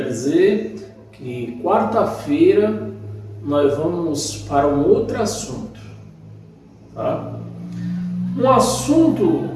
dizer que quarta-feira nós vamos para um outro assunto, tá? Um assunto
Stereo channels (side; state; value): both; identical; correlation 1.00